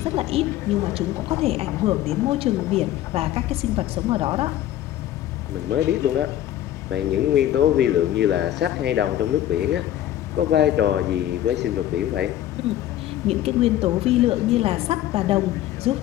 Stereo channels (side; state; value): right; quieter; 12.9 dB